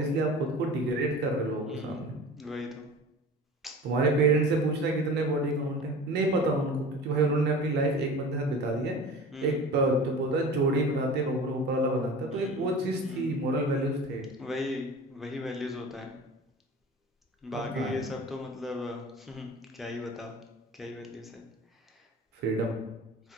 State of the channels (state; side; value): normal; both; correlation 0.38